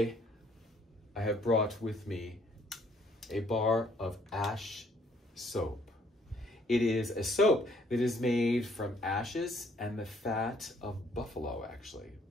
I have brought with me a bar of ash soap. It is a soap that is made from ashes and the fat of buffalo,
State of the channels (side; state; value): both; normal; correlation 0.64